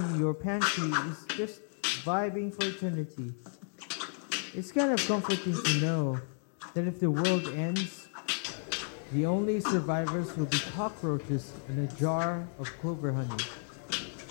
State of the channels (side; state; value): right; silent; 56 dB below the other